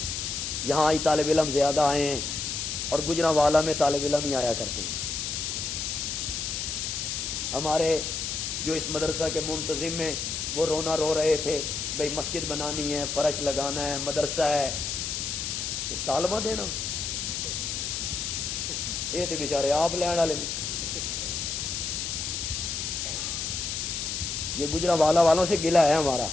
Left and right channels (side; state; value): left; noise; hiss, 3 dB below the sound